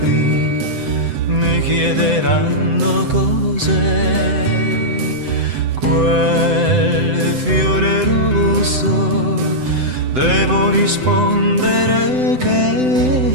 mi chiederanno cos'è quel fiore rosso, devo rispondere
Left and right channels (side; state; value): left; late; 7.8 ms